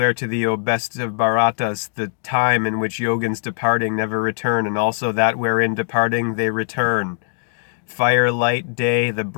to thee, O best of Bharatas, the time in which yogins departing never return, and also that wherein departing they return. Firelight day, the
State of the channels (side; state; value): right; silent; digital silence